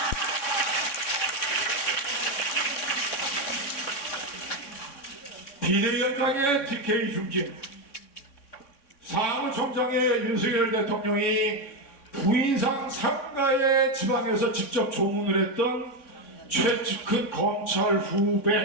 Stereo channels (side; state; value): right; late; 3.6 ms